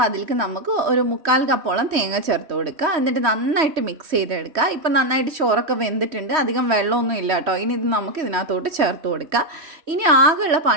അതിലേക്ക് നമുക്ക് ഒരു 1/4 കപ്പോളം തേങ്ങ ചേർത്ത് കൊടുക്കുക. എന്നിട്ട് നന്നായിട്ട് മിക്സ് ചെയ്തെടുക്കുക. ഇപ്പം നന്നായിട്ട് ചോറൊക്കെ വെന്തിട്ടുണ്ട്, അധികം വെള്ളമൊന്നും ഇല്ല കേട്ടോ. ഇനി ഇത് നമുക്ക് ഇതിനകത്തോട്ട് ചേർത്ത് കൊടുക്കുക. ഇനി ആകെയുള്ള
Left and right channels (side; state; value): left; late; 3.1 ms